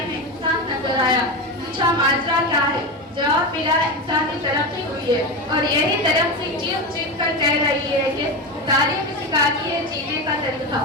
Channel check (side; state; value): both; normal; correlation 0.19